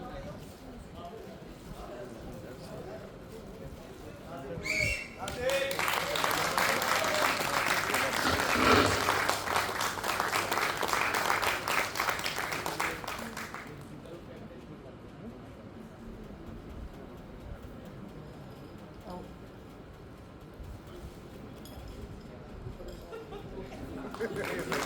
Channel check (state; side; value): identical; both; correlation 1.00